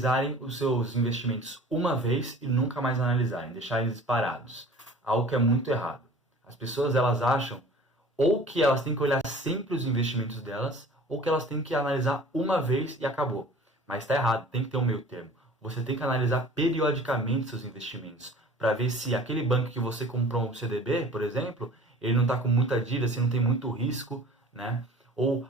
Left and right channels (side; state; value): both; normal; correlation 0.45